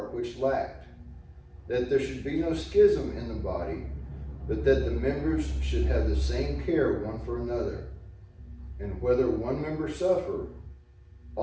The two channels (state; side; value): identical; both; correlation 1.00